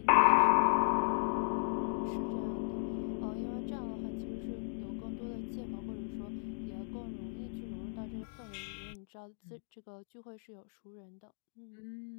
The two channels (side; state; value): right; silent; digital silence